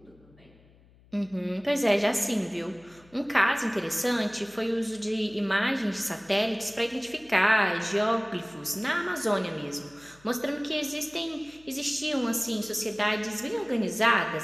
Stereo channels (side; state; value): left; noise; hum, 28 dB below the sound